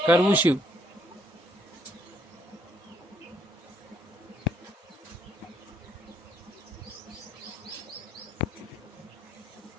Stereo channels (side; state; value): both; normal; correlation 0.69